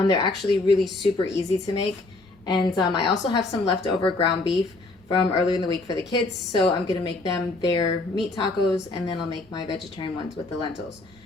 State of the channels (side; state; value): right; quieter; 3.2 dB